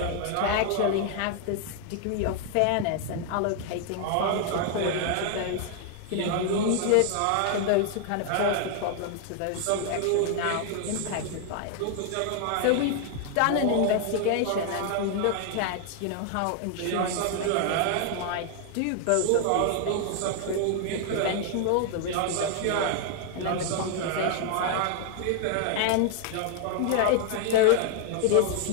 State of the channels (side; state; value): both; different; correlation 0.00